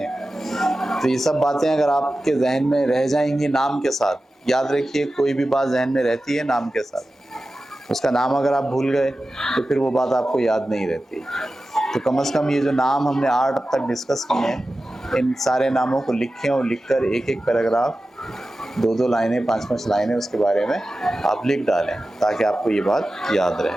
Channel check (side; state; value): both; normal; correlation 0.94